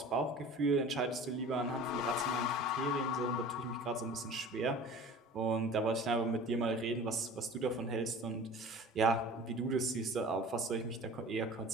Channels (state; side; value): normal; both; correlation 0.41